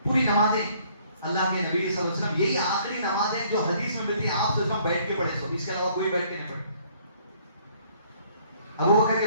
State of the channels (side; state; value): both; inverted; correlation -0.62